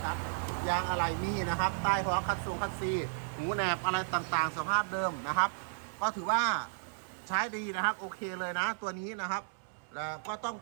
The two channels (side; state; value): left; silent; digital silence